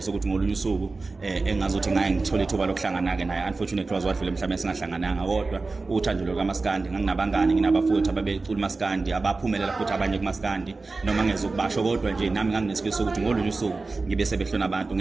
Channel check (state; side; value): quieter; left; 3.7 dB